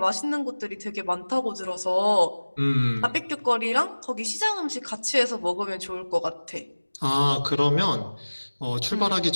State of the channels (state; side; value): inverted; both; correlation -1.00